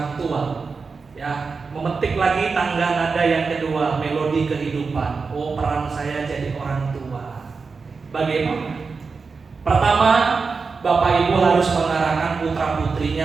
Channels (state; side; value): quieter; left; 4.7 dB